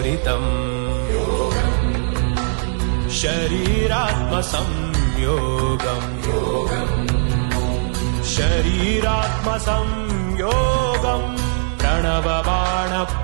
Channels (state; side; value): silent; left; digital silence